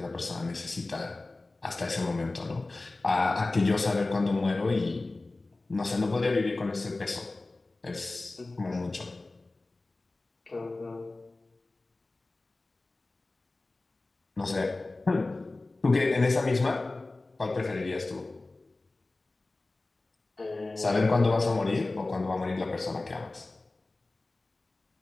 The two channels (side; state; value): right; quieter; 3.1 dB